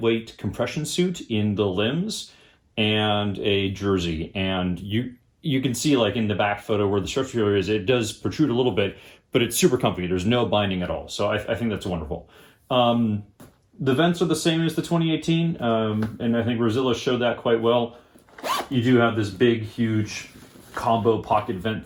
compression suit in the limbs and a jersey. And you can see like in the back photo where the stretch material is, it does protrude a little bit, but it's super comfy. There's no binding at all. So I think that's wonderful. The vents are the same as the 2018, and I think Rosilla showed that quite well. You do have this big, huge combo pocket vent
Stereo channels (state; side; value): identical; both; correlation 1.00